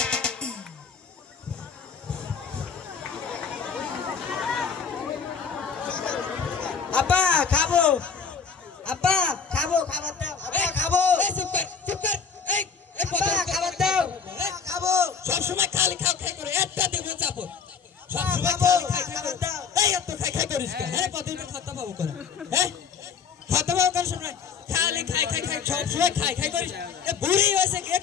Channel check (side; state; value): right; quieter; 6.2 dB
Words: আপা খাবো, আপা খাবো, খাবার দাও, আপা খাবো। চুপ কর। এই আপা খাবার দাও, খাবো। সব সময় খালি খাও খাই করে একটা দেবো চাপো। সব আপা সময় খাবো, খালি খাই খাই খাবার করে। দাও। এই এত খাই খাই করিস কেন? হ্যাঁ কতদিন খাতা পাবো করে? হ্যাঁ খাতা পাবো কেন সময়? খালি খাই খাই খাই সব সময় খাই খাই করিস। এ বুড়ি হয়েছে